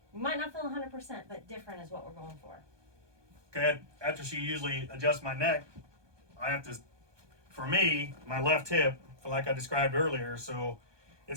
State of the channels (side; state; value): left; late; 1.2 ms